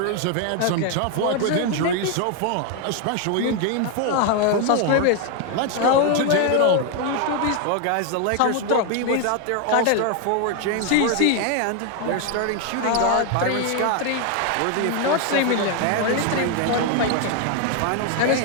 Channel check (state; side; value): different; both; correlation 0.01